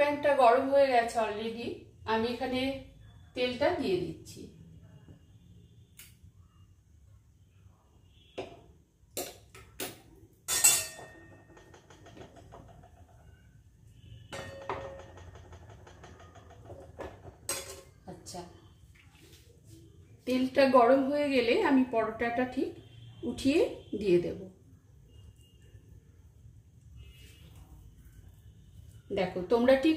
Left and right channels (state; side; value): identical; both; correlation 1.00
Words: গরম হয়ে গেছে অলরেডি। আমি এখানে তেলটা দিয়ে দিচ্ছি। আচ্ছা, তেলটা গরম হয়ে গেলে আমি পরোটাটা ঠিক উঠিয়ে দিয়ে দেব। দেখো তোমরা ঠিক